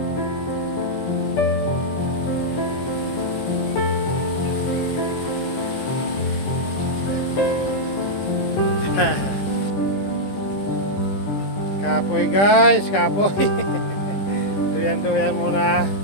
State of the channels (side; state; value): right; late; 15 ms